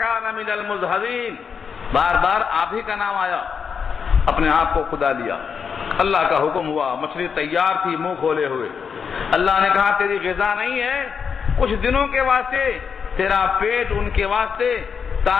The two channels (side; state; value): right; quieter; 6.4 dB